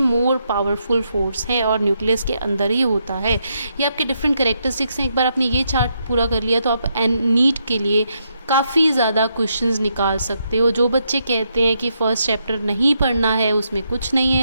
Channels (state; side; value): inverted; both; correlation -0.79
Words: पावरफुल फोर्स है और न्यूक्लियस के अंदर ही होता है। ये आपके डिफरेंट कैरेक्टरिस्टिक्स हैं। एक बार आपने ये चार्ट पूरा कर लिया तो आप नीट के लिए काफ़ी ज़्यादा क्वेश्चंस निकाल सकते हो। जो बच्चे कहते हैं कि फर्स्ट चैप्टर नहीं पढ़ना है, उसमें कुछ नहीं